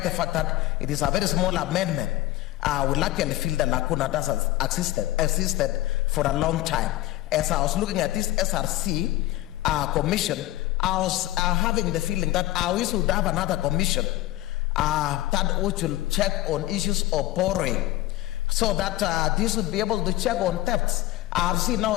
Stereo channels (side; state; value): right; quieter; 16.5 dB